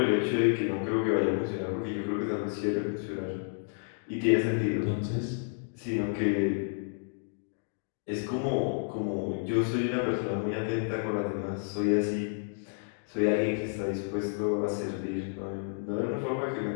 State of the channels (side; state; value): right; silent; digital silence